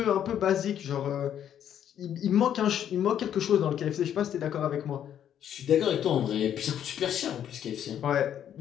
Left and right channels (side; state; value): right; quieter; 9.9 dB